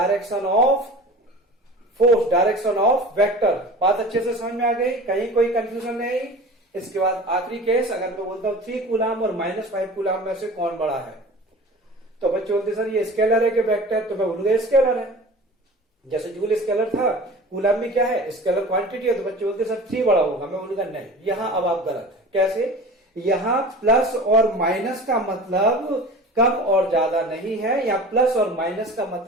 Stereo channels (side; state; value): both; normal; correlation 0.38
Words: of force, direction of vector. बात अच्छे से समझ में आ गई? कहीं कोई कंफ्यूजन नहीं। इसके बाद आखिरी केस, अगर मैं बोलता हूं 3 कूलम और -5 कूलम में से कौन बड़ा है, तो बच्चे बोलते सर ये स्केलर है कि वेक्टर? तो मैं बोलूंगा स्केलर है। जैसे जूल स्केलर था, कूलम में क्या है, स्केलर क्वांटिटी है, तो बच्चे बोलते सर 3 बड़ा होगा। मैं बोलूंगा नहीं, यहां अब आप गलत है। कैसे? यहां प्लस और माइनस का मतलब कम और ज्यादा नहीं है, या प्लस और माइनस का